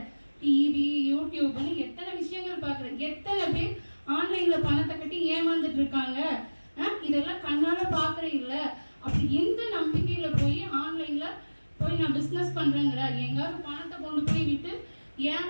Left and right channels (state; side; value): inverted; both; correlation -1.00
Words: டிவி, யூடியூப்னு எத்தனை விஷயங்கள் பாக்குற. எத்தனை பேர் ஆன்லைன்ல பணத்தை கட்டி ஏமாந்துட்டு இருக்காங்க. இதெல்லாம் கண்ணால பாக்குற இல்ல. அப்படி எந்த நம்பிக்கையில போய் ஆன்லைன்ல போய் நான் பிசினஸ் பண்றேங்கிற? எங்காவது பணத்தை கொண்டு போய் விட்டு